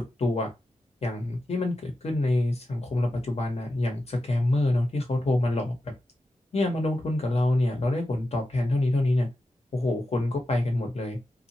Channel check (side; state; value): both; normal; correlation 0.90